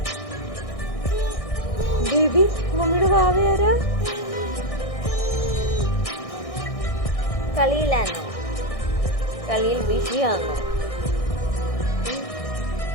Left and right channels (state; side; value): late; right; 1.6 ms